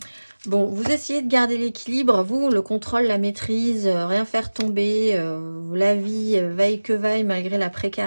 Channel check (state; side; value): inverted; both; correlation -1.00